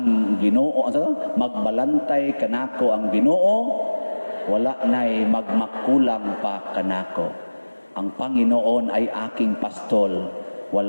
Ginoo, unsa to? Magbalantay kanako ang Ginoo. Wala na'y magmakulang pa kanako. Ang Panginoon ay aking pastol.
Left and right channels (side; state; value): both; inverted; correlation -1.00